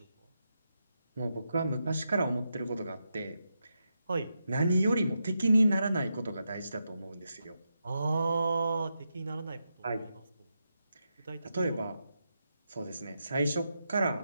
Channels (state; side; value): inverted; both; correlation -0.86